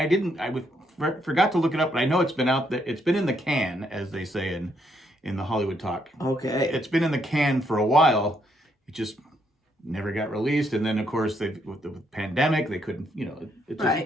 forgot to look it up, but I know it's been out there. It's been in the can, as they say in the Hollywood talk. Okay. It's been in the can for a while. It just never got released. And then, of course, with the pandemic, they couldn't,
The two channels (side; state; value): both; normal; correlation 0.74